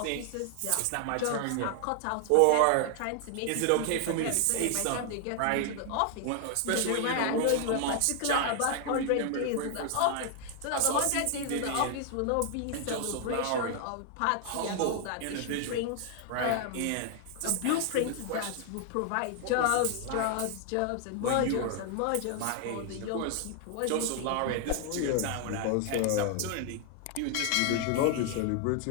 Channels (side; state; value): both; different; correlation 0.00